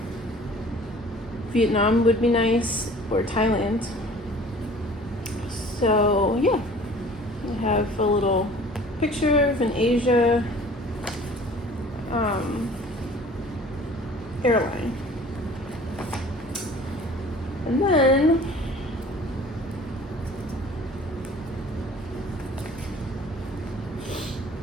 Vietnam would be nice, or Thailand. So yeah, I have a little picture of an Asia airline. And then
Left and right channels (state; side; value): normal; both; correlation 0.48